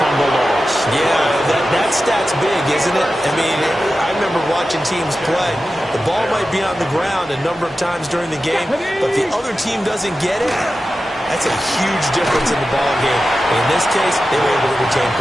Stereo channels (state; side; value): normal; both; correlation 0.93